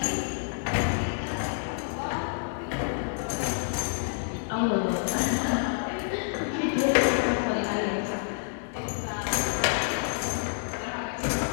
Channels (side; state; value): right; silent; digital silence